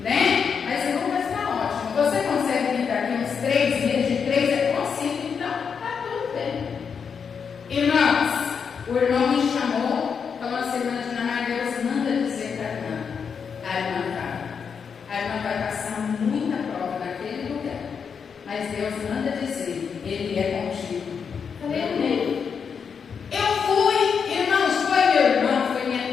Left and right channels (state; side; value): quieter; right; 6.4 dB